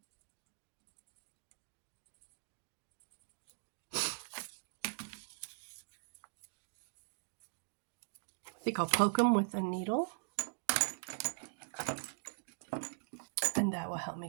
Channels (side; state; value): left; silent; digital silence